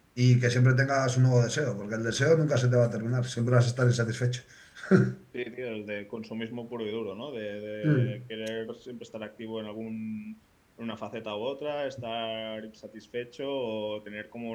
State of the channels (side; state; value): both; identical; correlation 1.00